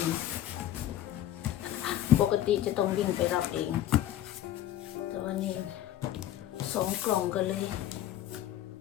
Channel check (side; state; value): right; quieter; 12.5 dB